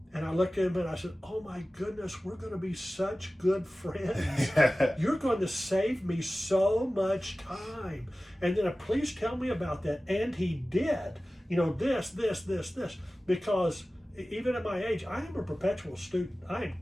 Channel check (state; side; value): normal; both; correlation 0.96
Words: And I looked at him and I said, oh my goodness, we're going to be such good friends. You're going to save me so much time. And then please tell me about that. And he did. This. Because even at my age, I am a perpetual student. I am